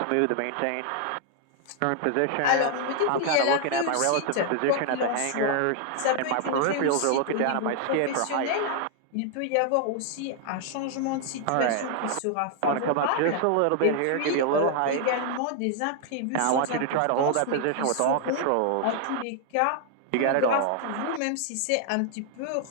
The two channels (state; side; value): different; both; correlation 0.00